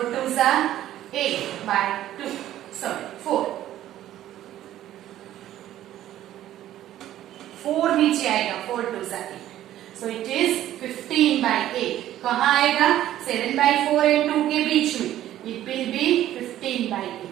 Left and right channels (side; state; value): left; quieter; 12.9 dB